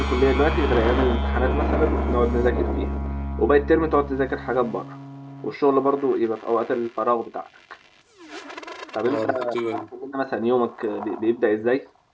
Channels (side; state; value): both; identical; correlation 1.00